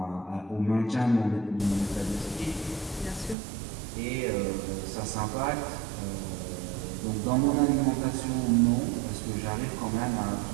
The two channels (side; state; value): left; drops out; at 3.4 s